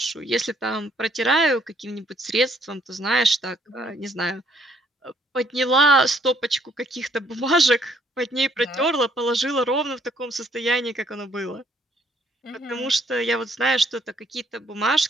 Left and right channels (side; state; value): both; normal; correlation 0.66